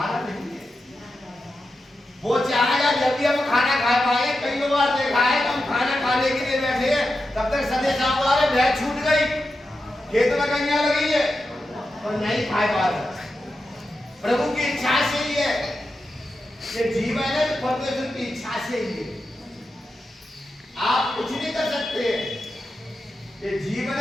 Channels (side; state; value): both; normal; correlation 0.90